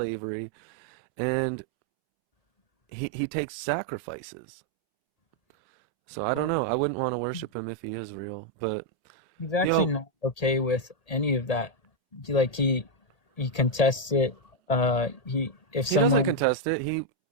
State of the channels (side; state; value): right; late; 1.8 ms